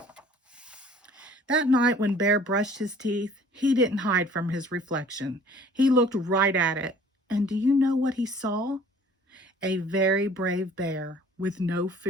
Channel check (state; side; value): normal; both; correlation 0.52